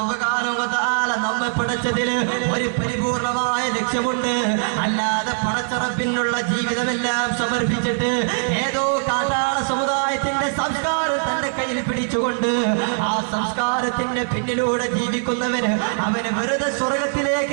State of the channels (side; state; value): left; silent; digital silence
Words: നമ്മെ പടച്ചതിൽ ഒരു പരിപൂർണമായ ലക്ഷ്യമുണ്ട്. അല്ലാതെ പടച്ചറപ്പിനുള്ള ജീവിതമെല്ലാം സമർപ്പിച്ചിട്ട് ഏതോ കാട്ടാള സമുദായത്തിന്റെ സംസ്കാരം തന്റെ കയ്യിൽ പിടിച്ചുകൊണ്ട് ആ സംസ്കാരത്തിന്റെ പിന്നിലൂടെ ജീവിക്കുന്നവന് അവന് വെറുതെ